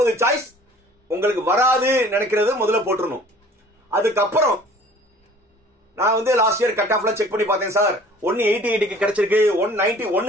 சாய்ஸ் உங்களுக்கு வராது நினைக்கிறது முதல்ல போட்டுறணும். அதுக்கப்புறம் நான் வந்து லாஸ்ட் இயர் கட் ஆஃப்ல செக் பண்ணி பார்த்தேன் சார். 188க்கு கிடைச்சிருக்கு,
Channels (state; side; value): normal; both; correlation 0.50